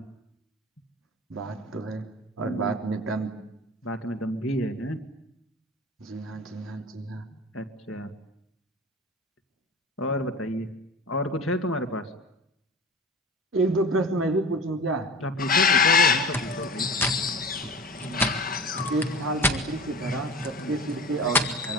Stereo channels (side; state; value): both; normal; correlation 0.35